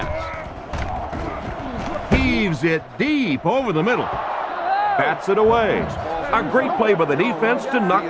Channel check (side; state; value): both; identical; correlation 1.00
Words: Heaves it deep over the middle. Bats it away. A great play by the defense to